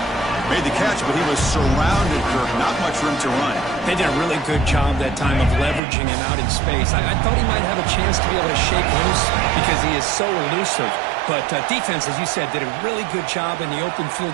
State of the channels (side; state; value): left; drops out; at 5.8 s